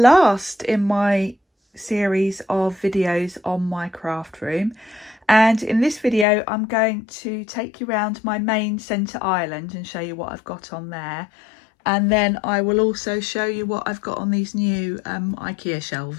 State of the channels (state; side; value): drops out; right; at 6.2 s